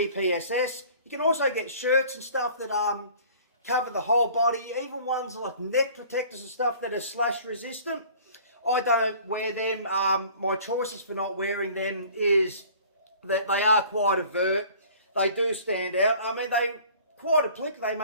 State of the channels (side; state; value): both; inverted; correlation -0.49